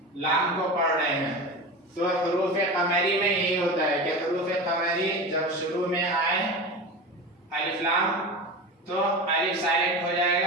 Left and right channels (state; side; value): normal; both; correlation 0.28